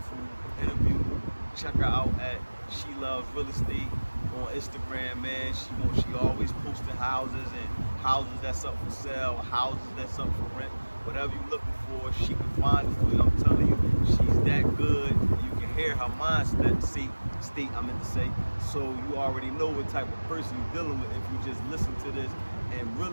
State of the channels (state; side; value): inverted; both; correlation -1.00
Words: interview. Check her out at She Loves Real Estate on Instagram, man. She always posting houses and houses that's up for sale, houses that's up for rent. Whatever you're looking for, she can find it for you. I'm telling you, she's that good. You can hear her mindset state, I meant to say. So you already know what type of person you're dealing with if you just listen to this and